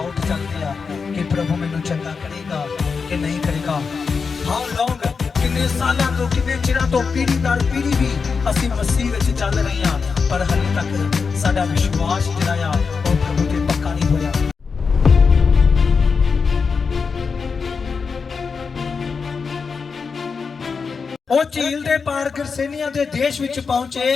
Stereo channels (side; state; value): right; quieter; 5.3 dB